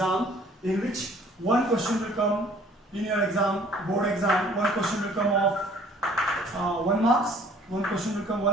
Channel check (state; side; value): normal; both; correlation 0.56